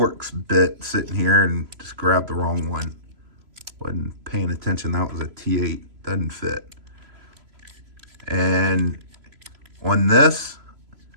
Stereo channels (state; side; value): late; left; 3.0 ms